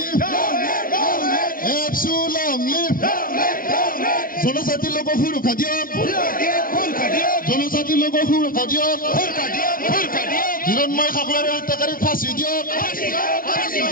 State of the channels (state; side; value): late; right; 0.42 ms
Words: Absolute live. জনজাতি লোক সুৰক্ষা দিয়ক জনজাতি লোক সুৰক্ষা দিয়ক হিৰণময় খাকলাৰে হত্যাকাৰীক ফাঁচি দিয়ক